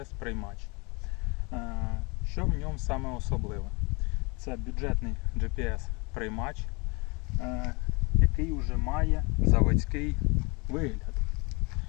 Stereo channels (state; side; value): quieter; right; 29.0 dB